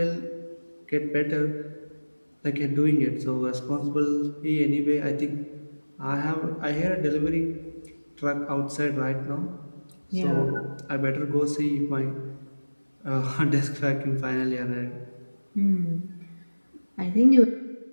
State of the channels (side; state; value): both; inverted; correlation -1.00